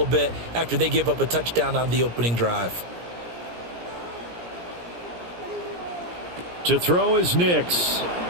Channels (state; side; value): late; left; 17 ms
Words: bit after they give up a touchdown on the opening drive. To throw is Nix.